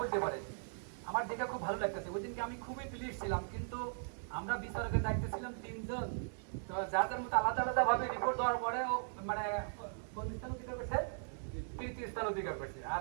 পারে, আমার দেখে খুব ভালো লাগতেছে। ওই দিনকে আমি খুবই প্লিজ ছিলাম, কিন্তু আমরা বিচারকের দায়িত্বে ছিলাম তিনজন, তো যাদের মতো আলাদা আলাদা ভাবে রিপোর্ট দেওয়ার পরে মানে কোন স্থান অধিকার করছে, তৃতীয় স্থান অধিকার করছে, আর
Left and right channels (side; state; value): left; silent; digital silence